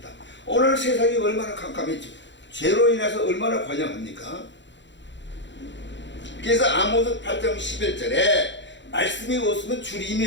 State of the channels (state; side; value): late; right; 0.53 ms